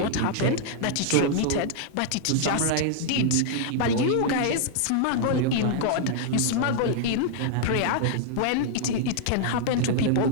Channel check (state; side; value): different; both; correlation -0.01